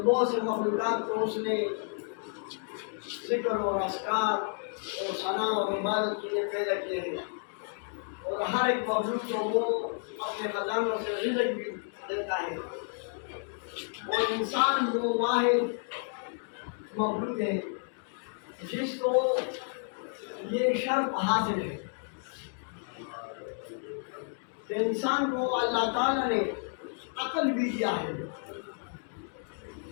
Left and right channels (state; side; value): silent; right; 57 dB below the other